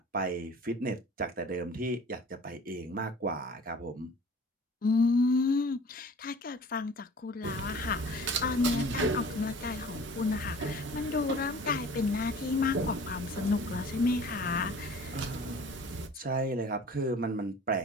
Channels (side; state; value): both; normal; correlation 0.45